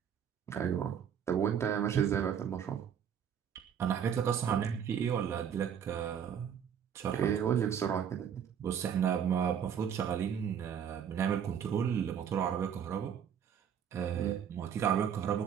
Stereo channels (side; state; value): left; quieter; 8.4 dB